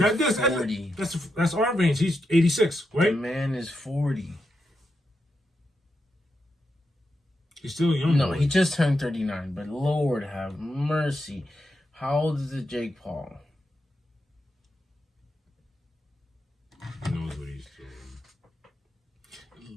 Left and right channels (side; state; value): both; normal; correlation 0.85